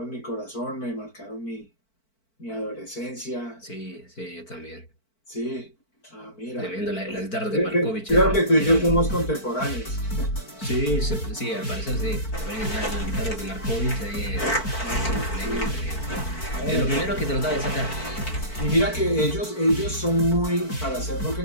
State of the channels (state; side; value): late; right; 4.5 ms